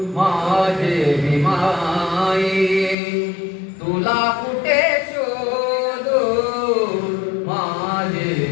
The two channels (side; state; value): right; drops out; at 3.0 s